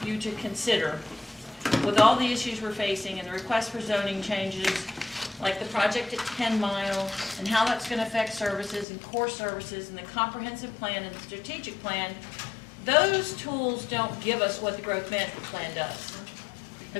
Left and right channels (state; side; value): drops out; right; at 8.8 s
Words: you to consider, with all the issues we're facing and the request for zoning changes, like the project at 10 Mile, and how that's going to affect services and core services and the comprehensive plan and the strategic plan, those tools don't give us what the growth management plan does. The